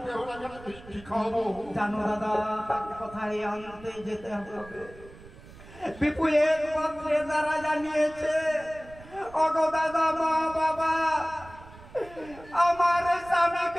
বেহুলাকে মিষ্টি খাওয়াবো। জানো দাদা তাকে কোথায় আনতে যেতে হবে? বিপু এক পত্রে তারা জানিয়েছে, ওগো দাদা মা বাবা আমার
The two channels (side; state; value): right; noise; rumble, 20 dB below the sound